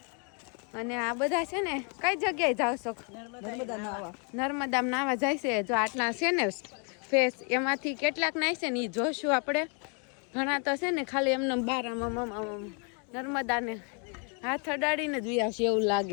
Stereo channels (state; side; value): quieter; right; 37.4 dB